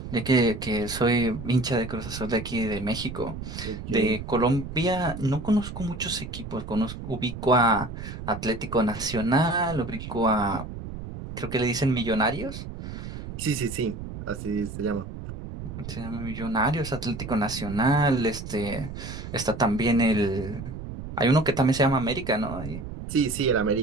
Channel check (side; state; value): right; noise; rumble, 9 dB below the sound